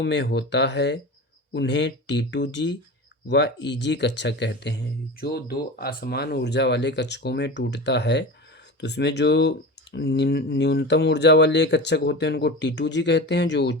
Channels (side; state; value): both; normal; correlation 0.29